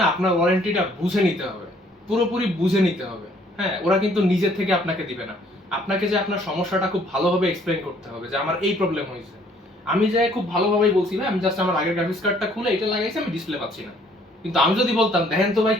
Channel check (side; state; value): both; normal; correlation 0.61